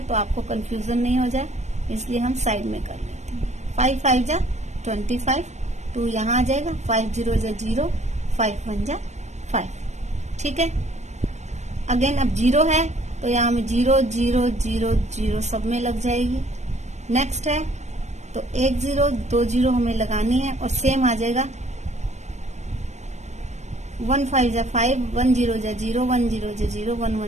तो आपको कंफ्यूजन नहीं हो जाए, इसलिए हम साइड में कर लेते हैं। 5 5 जा 25, 2 यहाँ आ जाएगा, 5 0 जा 0, 5 1 जा 5। ठीक है, अगेन अब 0 है तो यहाँ में 0 0 0 0 सब में लग जाएगी। नेक्स्ट है तो 1 0 2 0 हमें लगानी है और सेम आ जाएगा 1 5 जा 5, 1 0 जा 0, 1 0 जा 0, 1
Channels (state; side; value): late; left; 0.33 ms